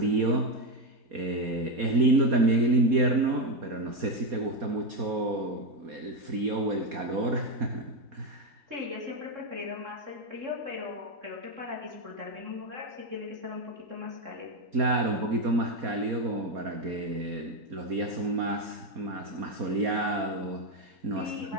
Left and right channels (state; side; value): late; left; 4.2 ms